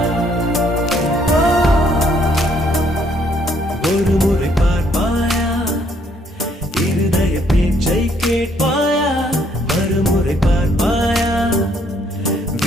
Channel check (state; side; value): normal; both; correlation 0.67